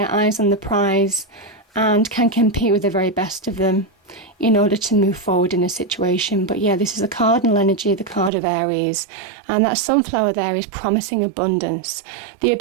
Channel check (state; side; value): drops out; left; at 8.3 s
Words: eyes on the prize and can compete with the very best of them in order to move forward in a situation. But yeah, this is a cardinal energy, the card of Aries, and that sunflower there is promising abundance, the